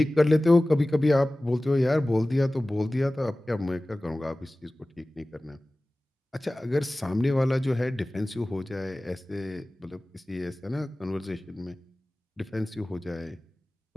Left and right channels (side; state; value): both; normal; correlation 0.97